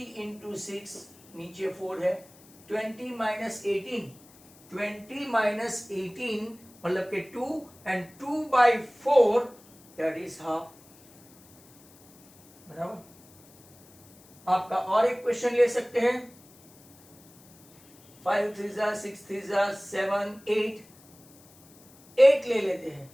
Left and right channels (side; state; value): left; noise; hiss, 26 dB below the sound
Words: इंटू 6, नीचे 4 है, 20 माइनस 18, 20 माइनस 18 मतलब के 2 एंड 2/4 दैट इज हाफ। बराबर। आपका और एक क्वेश्चन ले सकते हैं, 5 3 6 3 7 8, 8 ले लेते हैं,